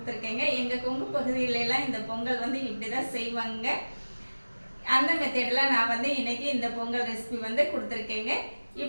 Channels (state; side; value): inverted; both; correlation -1.00